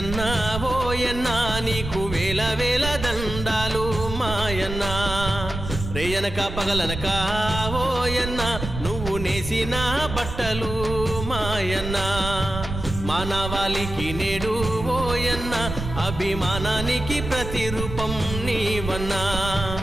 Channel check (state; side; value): noise; right; rumble, 7 dB below the sound